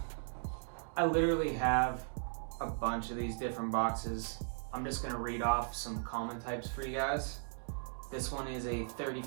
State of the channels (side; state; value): left; silent; digital silence